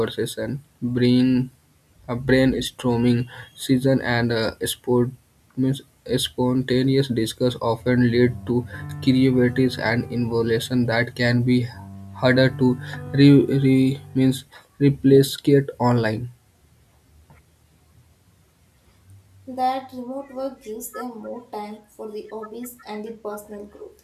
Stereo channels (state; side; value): identical; both; correlation 1.00